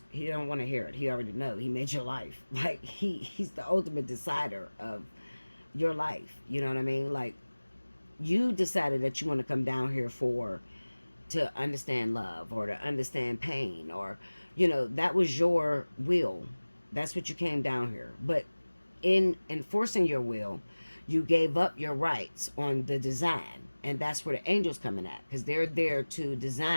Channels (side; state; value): both; inverted; correlation -1.00